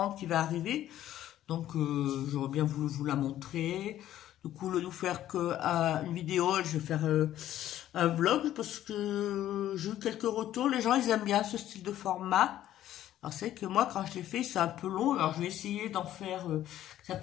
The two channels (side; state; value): right; quieter; 12.6 dB